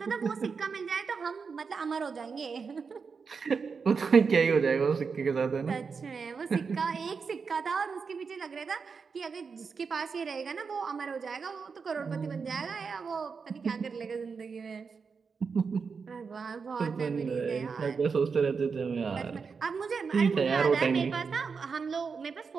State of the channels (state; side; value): quieter; left; 5.4 dB